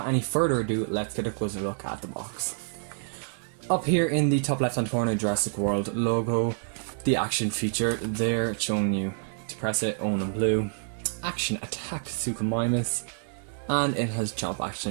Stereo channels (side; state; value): left; silent; digital silence